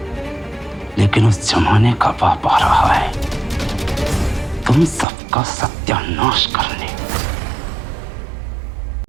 लेकिन उस जमाने का बाप आ रहा है तुम सबका सत्यानाश करने।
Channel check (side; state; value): left; drops out; at 5.1 s